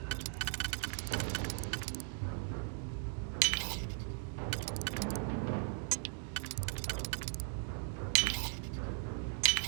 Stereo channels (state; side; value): silent; left; digital silence